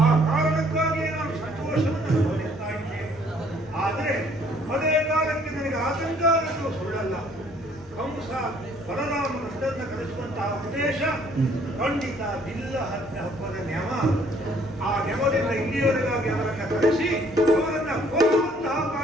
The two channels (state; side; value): normal; both; correlation 0.61